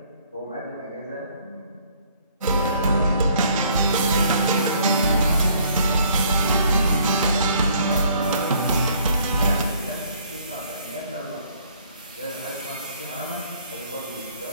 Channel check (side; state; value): both; inverted; correlation -0.62